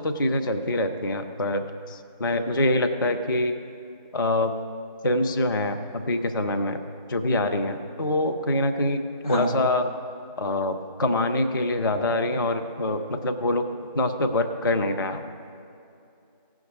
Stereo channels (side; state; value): both; inverted; correlation -0.48